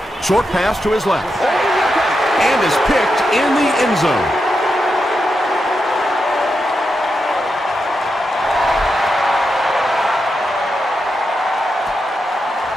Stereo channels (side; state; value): both; normal; correlation 0.86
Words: Short pass to his left. And is picked in the end zone.